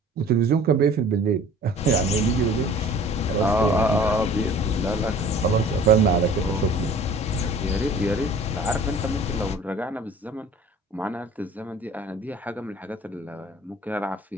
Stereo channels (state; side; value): normal; both; correlation 0.47